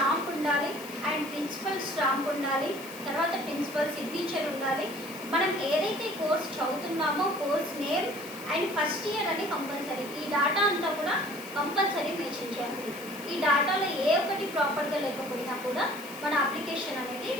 ఉండాలి అండ్ ప్రిన్సిపల్ స్టాంప్ ఉండాలి, తర్వాత ప్రిన్సిపల్ సిగ్నేచర్ ఉండాలి. మనం ఏదైతే కోర్స్ చదువుతున్నామో course name and first year అని కంపల్సరీ. ఈ డేటా అంతా కూడా కంపల్సరీ మెన్షన్ చేయాలి. ఈ డేటాలో ఏ ఒక్కటి ప్రాపర్గా లేకపోయినా కూడా మన అప్లికేషన్ అనేది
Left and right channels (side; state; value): left; noise; hiss, 16 dB below the sound